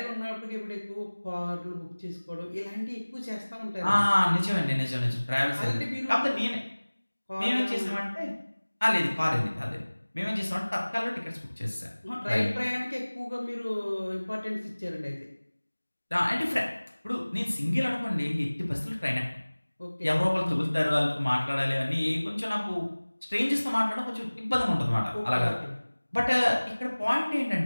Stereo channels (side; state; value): both; inverted; correlation -1.00